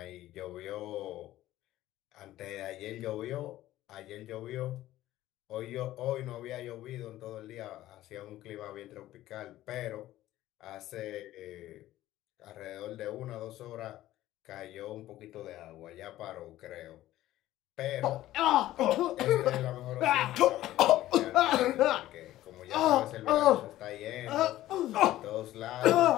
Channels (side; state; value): right; quieter; 14.8 dB